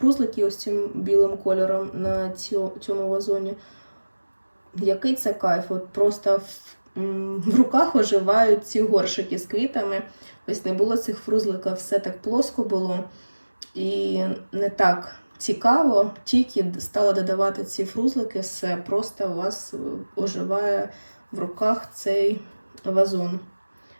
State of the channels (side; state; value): both; inverted; correlation -1.00